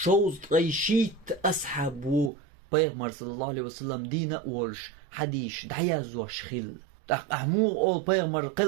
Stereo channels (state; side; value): drops out; left; at 2.3 s